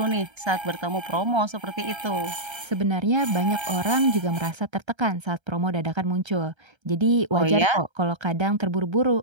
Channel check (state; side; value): late; left; 1.3 ms